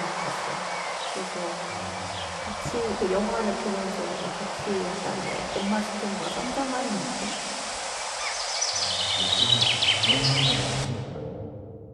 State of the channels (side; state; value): both; identical; correlation 1.00